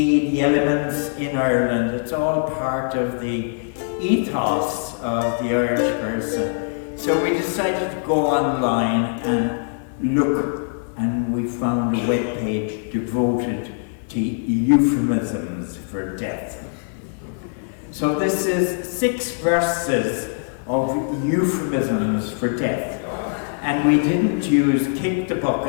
the elements in Ireland. It's all part of the ethos of the Irish person. So we decided to go online and look, and we found a webpage devoted to euphemisms for death. So this is 6 verses of euphemisms for death. And we didn't use kick the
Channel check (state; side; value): silent; right; digital silence